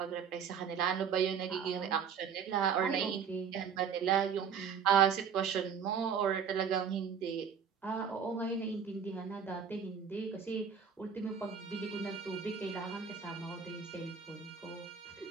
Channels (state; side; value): quieter; left; 7.1 dB